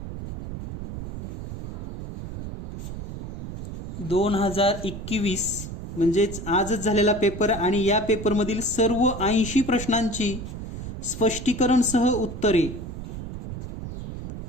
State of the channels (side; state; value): right; noise; rumble, 8 dB below the sound